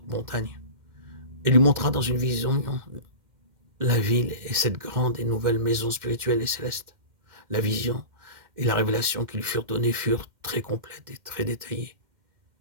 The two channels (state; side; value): late; left; 2.1 ms